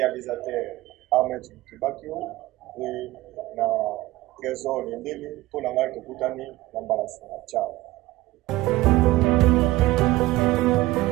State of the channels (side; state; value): left; quieter; 17.9 dB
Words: Ahmed Kibakio et na Trésor Lendele pour na ngai tokutani na mbalasi na ciao.